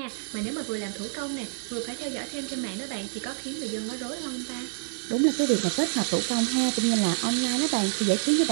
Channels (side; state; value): left; silent; digital silence